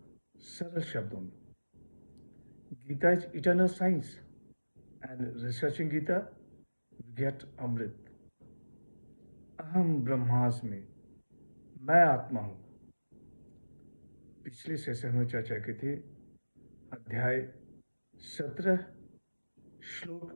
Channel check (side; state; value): both; inverted; correlation -1.00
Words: सरल शब्दों में। Gita is eternal science and researching Gita we get amrit. अहम ब्रह्मास्मि, मैं आत्मा हूं। पिछले सेशन में चर्चा की थी अध्याय 17 श्लोक